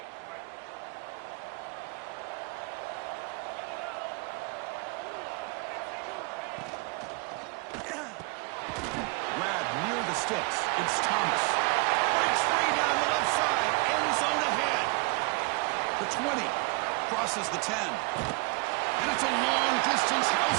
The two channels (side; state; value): left; quieter; 29.1 dB